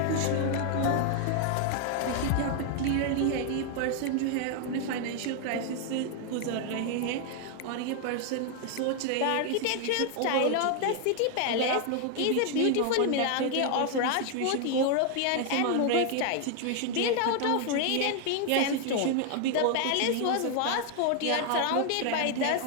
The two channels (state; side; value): different; both; correlation 0.00